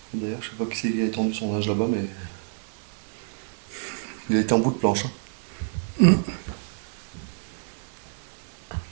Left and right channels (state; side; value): silent; left; digital silence